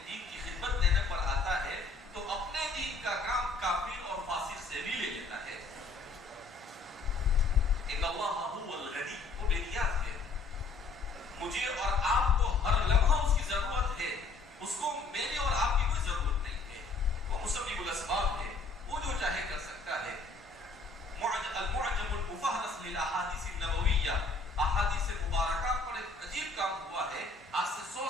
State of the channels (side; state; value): right; quieter; 3.9 dB